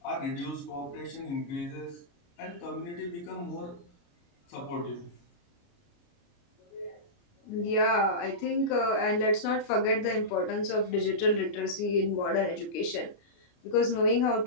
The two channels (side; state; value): right; late; 29 ms